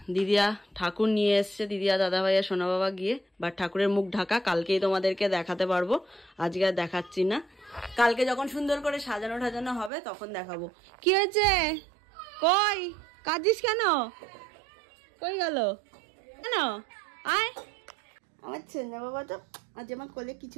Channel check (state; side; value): drops out; left; at 9.9 s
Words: দিদিয়া ঠাকুর নিয়ে এসছে, দিদিয়া দাদা ভাইয়া সোনা বাবা গিয়ে। বাট ঠাকুরের মুখ ঢাকা, কালকেই তোমাদেরকে দেখাতে পারবো, আজকে আর দেখাচ্ছি না। কালকে যখন সুন্দর করে সাজানো টাজানো হবে তখন দেখাবো। কি হয়েছে? কই কাঁদিস কেন? কই গেল কেন? আয়, আমার সোনা বাবা তো আজ আমার কোলে কি